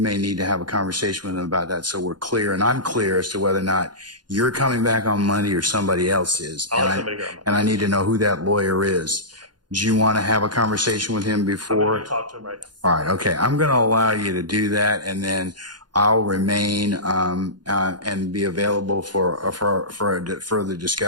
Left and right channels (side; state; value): left; late; 0.70 ms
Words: need to have a conversation with him about that, so we're clear, and I'm clear as to whether or not you're coming back on Monday or somebody else is. I'll have somebody here on Monday. And I need to know who that lawyer is. Do you want to have a conversation with him before? I'm going to talk to him right now. All right, okay. I'm going to allow you to do that, and then I'll remain and be available for a further